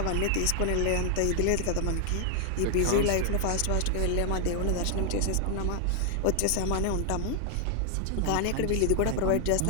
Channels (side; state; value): both; different; correlation 0.00